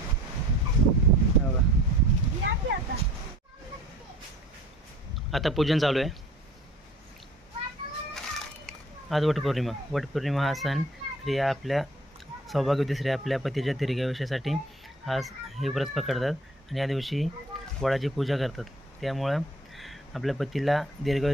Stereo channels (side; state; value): both; normal; correlation 0.51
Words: आता पूजन चालू आहे आज वटपौर्णिमा हा सण स्त्रिया आपल्या सौभाग्यवती स्त्रिया आपल्या पतीच्या दीर्घायुष्यासाठी हे व्रत पकडतात आणि या दिवशी वडाची पूजा करतात त्यामुळं आपल्या पतीला